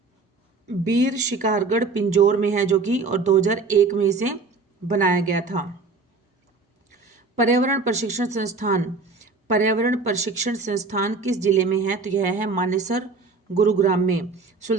बीर शिकारगढ़ पिंजौर में है जो कि, और 2001 में इसे बनाया गया था। पर्यावरण प्रशिक्षण संस्थान, पर्यावरण प्रशिक्षण संस्थान किस जिले में है? तो यह है मानेसर, गुरुग्राम में।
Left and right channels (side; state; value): left; quieter; 4.1 dB